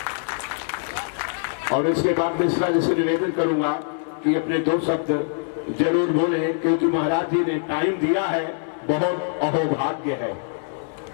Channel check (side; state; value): right; silent; 63 dB below the other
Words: और इसके बाद मिश्रा जी से निवेदन करूंगा कि अपने 2 शब्द जरूर बोले, क्योंकि महाराज जी ने टाइम दिया है, बहुत अहोभाग्य है।